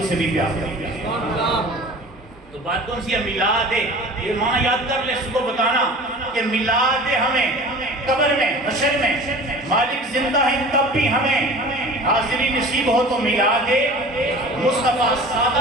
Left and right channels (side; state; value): both; normal; correlation 0.41